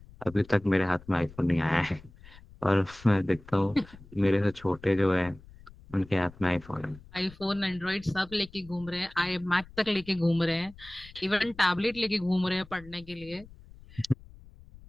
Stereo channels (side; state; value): left; noise; rumble, 21 dB below the sound